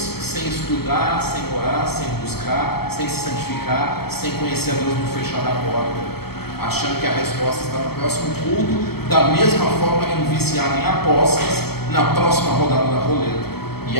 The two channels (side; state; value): right; late; 0.96 ms